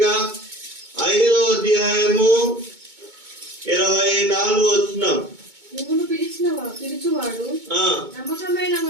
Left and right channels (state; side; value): late; left; 2.2 ms